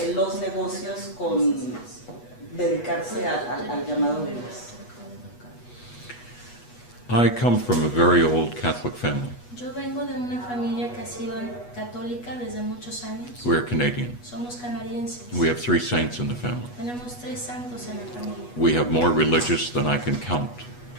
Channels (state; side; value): late; right; 8.2 ms